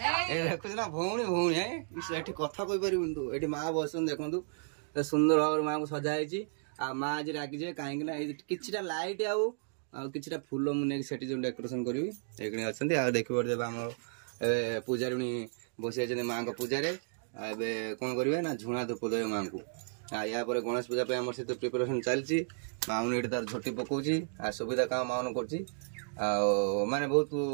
देखुच ना भौणी भौणी है कथा कही पार ये माँ बस देखु सुंदर भाव माँ को सजाई आ माँ आज रागी जाए कहीं कि लाइट आउ फूल मुझे जो डेकोरेशन करी ये अच्छा देखिए आम पूजारी बसी माँ को पूजा कौन करेंगे ना झुणा धूप देवे माँ को या गणेश पूजा पे आम सहित प्रिपरेशन चलती माउन ये तार झोटी पकाउची आ सुविधा काम माउन कर माने बहुत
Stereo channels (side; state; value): left; silent; digital silence